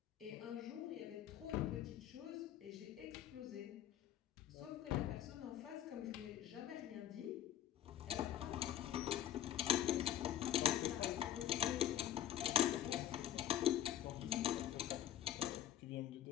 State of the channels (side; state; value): right; quieter; 11.6 dB